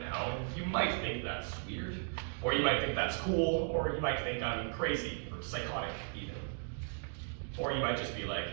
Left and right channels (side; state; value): left; silent; 54 dB below the other